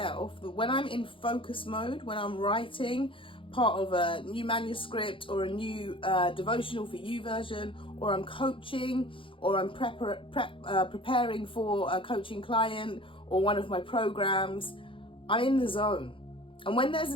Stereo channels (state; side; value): late; right; 0.25 ms